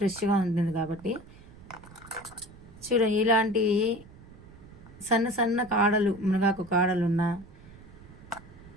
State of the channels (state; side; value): noise; right; rumble, 20 dB below the sound